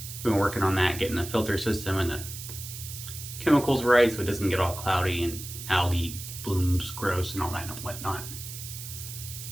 We've been working on that, getting the filter system and the chemicals right so it doesn't get all cloudy and algae blooms gross and all that and whatnot.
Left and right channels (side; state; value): right; noise; hiss, 10 dB below the sound